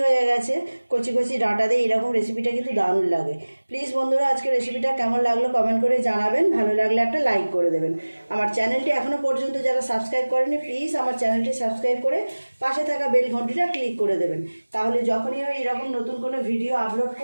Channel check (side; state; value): both; inverted; correlation -1.00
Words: হয়ে গেছে, কচি কচি ডাঁটা দিয়ে এইরকম রেসিপিটা কিন্তু দারুণ লাগে। প্লিজ বন্ধুরা, আজকে রেসিপিটা কেমন লাগলো কমেন্ট করে জানাবেন, ভালো লাগলে একটা লাইক করে দেবেন। আমার চ্যানেলটি এখনও পর্যন্ত যারা সাবস্ক্রাইব করেনি প্লিজ আমার চ্যানেলটি সাবস্ক্রাইব করে পাশে থাকা বেল ঘন্টিটা ক্লিক করে দেবেন, তাহলে যখনই আমি এরকম নতুন কোনো ভিডিও আপলোড